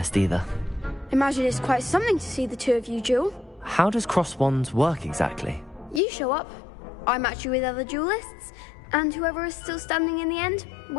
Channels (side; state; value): right; drops out; at 6.0 s